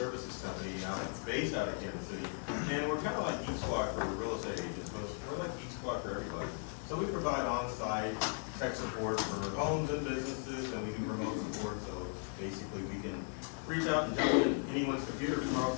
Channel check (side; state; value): right; silent; 53 dB below the other